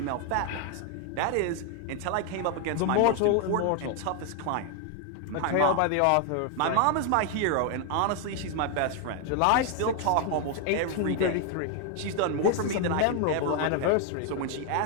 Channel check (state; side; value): different; both; correlation 0.00